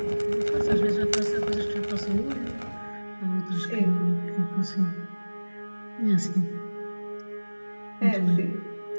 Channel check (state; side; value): inverted; both; correlation -1.00